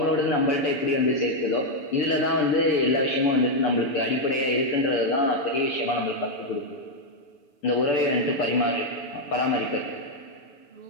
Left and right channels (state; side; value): late; right; 6.9 ms